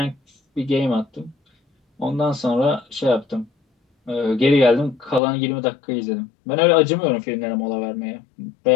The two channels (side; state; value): right; drops out; at 5.2 s